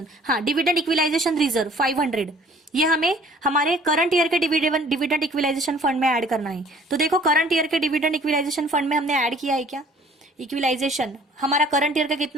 हाँ, डिविडेंड इक्विलाइजेशन रिजर्व 500, ये हमें हमारे करंट ईयर के डिविडेंड इक्विलाइजेशन फंड में ऐड करना है। तो देखो करंट ईयर के डिविडेंड इक्विलाइजेशन फंड में हमने ऐड किया है क्या, इक्विलाइजेशन हमारा करंट ईयर का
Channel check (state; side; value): normal; both; correlation 0.54